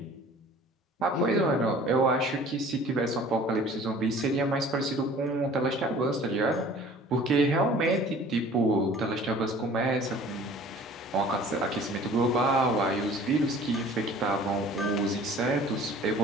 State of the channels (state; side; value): normal; both; correlation 0.48